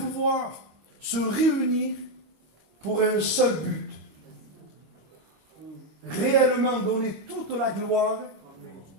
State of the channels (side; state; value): left; late; 25 ms